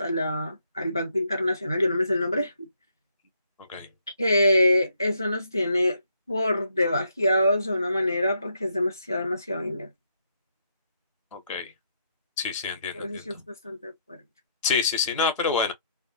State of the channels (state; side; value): inverted; both; correlation -0.73